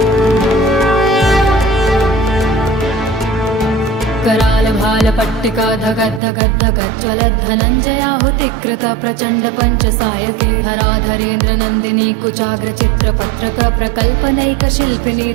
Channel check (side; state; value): left; drops out; at 6.2 s